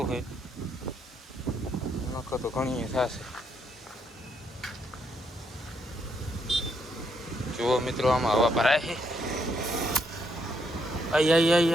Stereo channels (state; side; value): normal; both; correlation 0.75